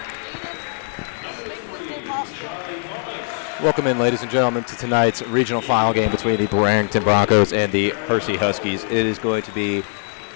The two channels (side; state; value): right; silent; 65 dB below the other